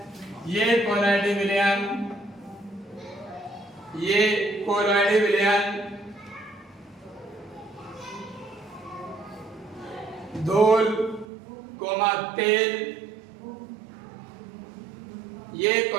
ये कोलॉइडल विलयन, ये कोलॉइडल विलयन धूल कोमा तेल, ये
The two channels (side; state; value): left; drops out; at 11.2 s